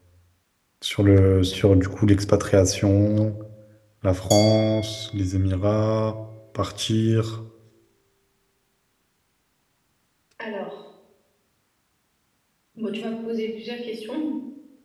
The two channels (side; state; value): both; identical; correlation 1.00